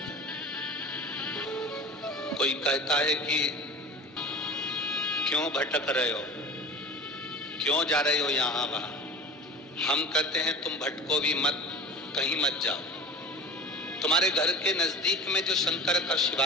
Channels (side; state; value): both; normal; correlation 0.38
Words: हैं? कोई कहता है कि क्यों भटक रहे हो, क्यों जा रहे हो यहां वहां। हम कहते हैं तुम भटको भी मत, कहीं मत जाओ। तुम्हारे घर के नजदीक में जो शंकर का